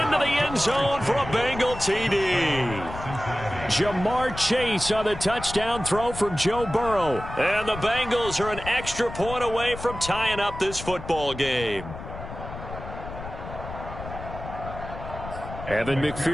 the end zone for a Bengal TD. Jamar Chase on the touchdown throw from Joe Burrow. And the Bengals are an extra point away from tying up this football game. Evan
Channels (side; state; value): left; noise; rumble, 11 dB below the sound